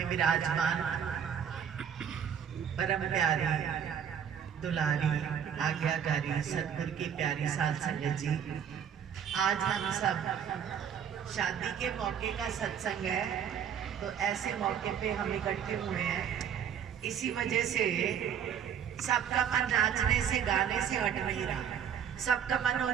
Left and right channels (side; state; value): left; quieter; 8.2 dB